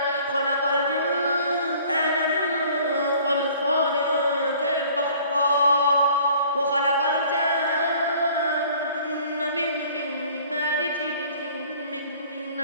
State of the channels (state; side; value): inverted; both; correlation -0.53